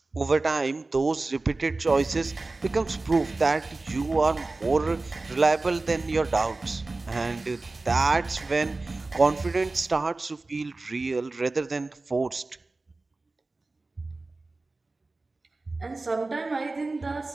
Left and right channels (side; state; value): left; quieter; 3.3 dB